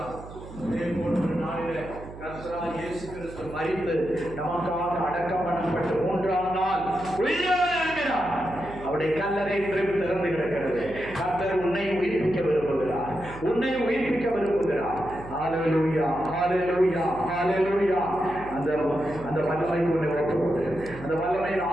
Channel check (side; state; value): right; noise; hum, 15 dB below the sound